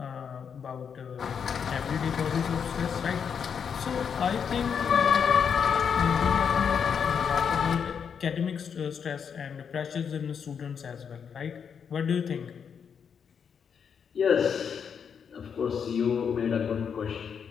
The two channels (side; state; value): right; quieter; 7.0 dB